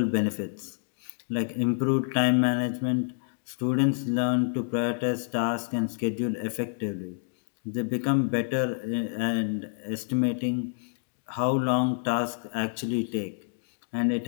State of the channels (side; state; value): right; silent; digital silence